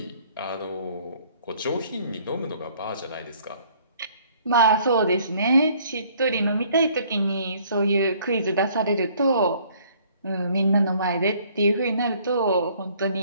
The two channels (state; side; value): inverted; both; correlation -0.59